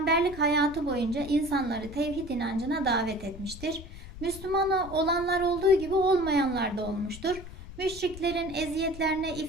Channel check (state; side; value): noise; left; rumble, 14 dB below the sound